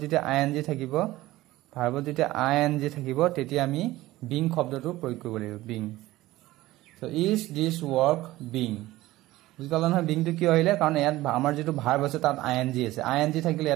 যেতিয়া ing থাকিব তেতিয়া আমি being শব্দটো প্ৰয়োগ কৰিব লাগিব being so is this work being বুজিলা নহয় being টো কি আহিলে কাৰণ ইয়াত আমাৰ যেটো ভাৰ্ব আছে তাত ing আছে ing থাকিলে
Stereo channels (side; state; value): left; quieter; 17.2 dB